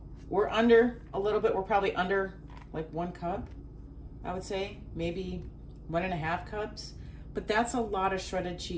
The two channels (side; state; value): both; identical; correlation 1.00